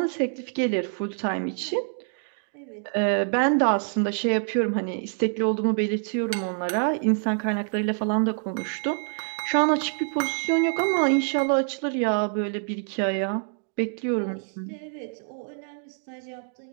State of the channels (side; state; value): left; silent; 61 dB below the other